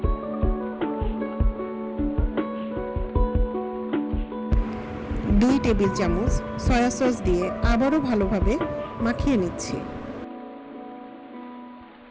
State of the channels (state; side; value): identical; both; correlation 1.00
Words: দুই টেবিল চামচ সয়া সস দিয়ে আবারও ভালোভাবে মাখিয়ে নিচ্ছি।